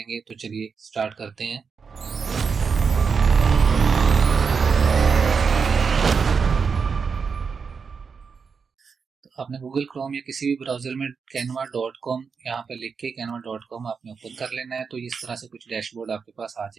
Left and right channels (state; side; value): quieter; left; 5.6 dB